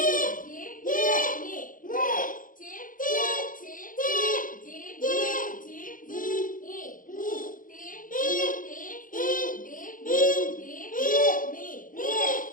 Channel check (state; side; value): late; right; 0.39 ms